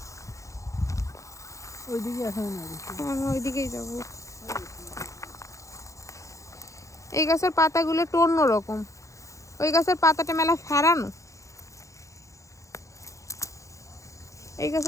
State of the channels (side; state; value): right; late; 0.15 ms